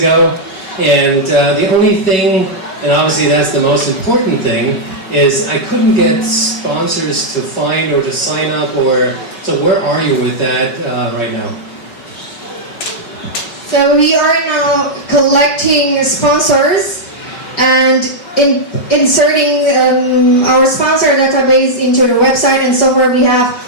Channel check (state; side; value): late; right; 5.3 ms